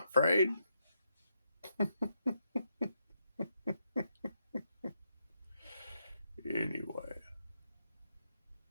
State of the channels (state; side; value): inverted; both; correlation -0.81